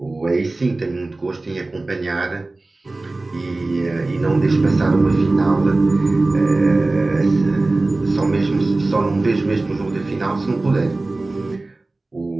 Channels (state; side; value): quieter; left; 3.1 dB